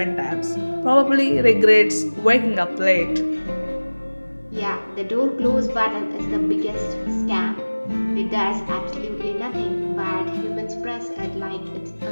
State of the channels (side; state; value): both; inverted; correlation -1.00